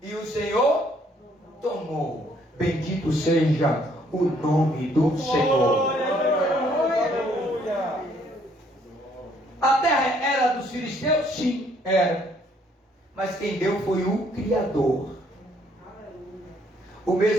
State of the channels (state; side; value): normal; both; correlation 0.65